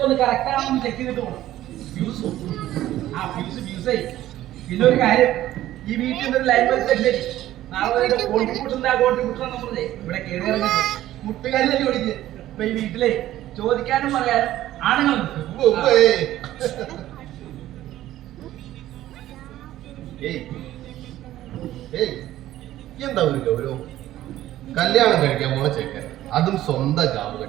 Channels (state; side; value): quieter; left; 14.0 dB